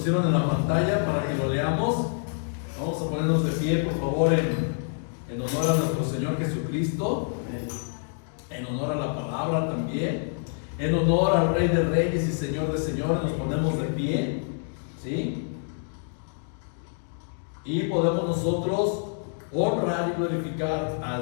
en la pantalla para que lo leamos. Vamos a ponernos de pie, por favor, en honor a nuestro Señor Jesucristo, en honor a la palabra también, en honor al Rey de Reyes y Señor de Señores. Nos ponemos de pie, ¿sí? Y podemos nosotros honrar y glorificar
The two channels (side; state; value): right; silent; digital silence